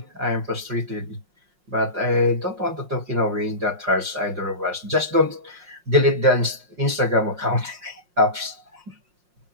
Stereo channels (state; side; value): late; left; 5.6 ms